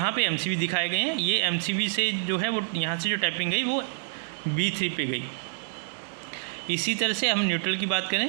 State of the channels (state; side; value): silent; left; 59 dB below the other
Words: पे एमसीबी दिखाए गए हैं। ये एमसीबी से जो है वो यहाँ से जो टैपिंग गई वो B3 पे गई। इसी तरह से हम न्यूट्रल की बात